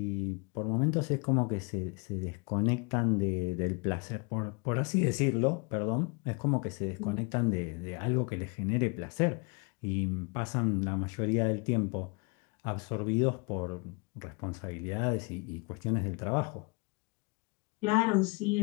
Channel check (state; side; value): quieter; right; 31.0 dB